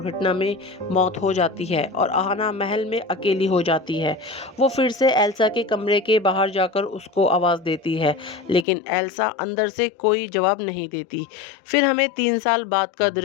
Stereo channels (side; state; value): right; drops out; at 8.7 s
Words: में मौत हो जाती है और आहाना महल में अकेली हो जाती है। वो फिर से एल्सा के कमरे के बाहर जाकर उसको आवाज़ देती है, लेकिन एल्सा अंदर से कोई जवाब नहीं देती। फिर हमें 3 साल बाद का